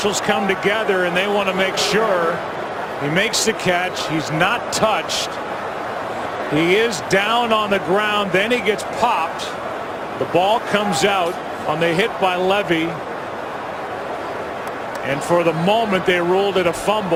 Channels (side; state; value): both; identical; correlation 1.00